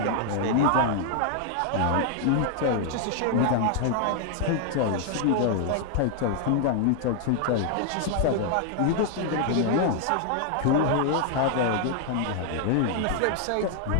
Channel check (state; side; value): different; both; correlation 0.00